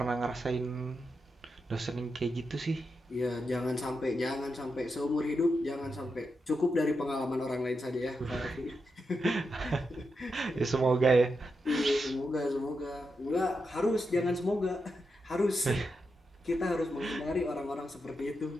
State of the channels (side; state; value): both; normal; correlation 0.86